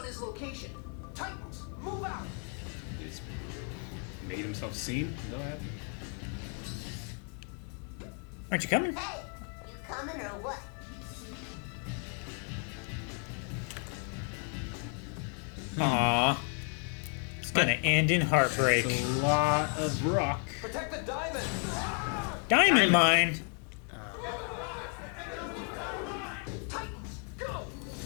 his location. Titans, move out! He's made himself seen. Is that what happened? Aren't you coming? Hey, you coming or what? Aw. It's gonna end in heartbreak. It's a lot of rock. Protect the diamond! Diamond mine! Titans, go!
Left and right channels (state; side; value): quieter; right; 39.2 dB